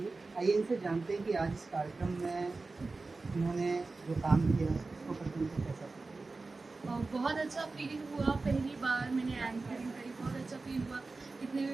आइए इनसे जानते हैं कि आज इस कार्यक्रम में उन्होंने जो काम किया उसको प्रथम से कैसा। बहुत अच्छा फीलिंग हुआ, पहली बार मैंने एंकरिंग करी, बहुत अच्छा फील हुआ। इतने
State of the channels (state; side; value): quieter; left; 3.7 dB